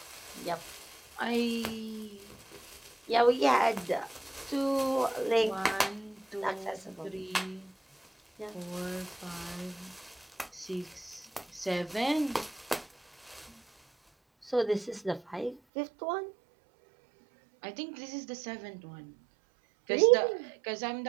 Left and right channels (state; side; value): drops out; left; at 15.6 s